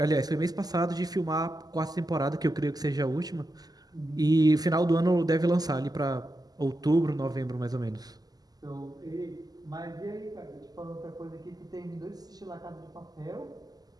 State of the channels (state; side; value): late; left; 0.19 ms